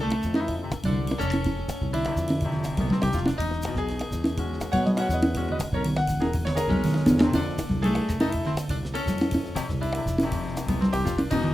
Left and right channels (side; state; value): both; normal; correlation 0.93